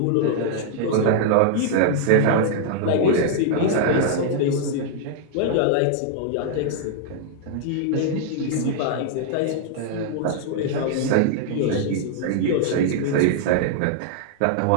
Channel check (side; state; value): both; different; correlation -0.01